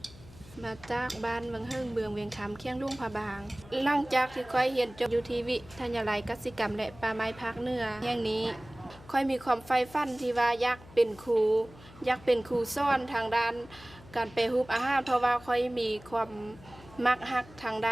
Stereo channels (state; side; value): noise; left; hum, 21 dB below the sound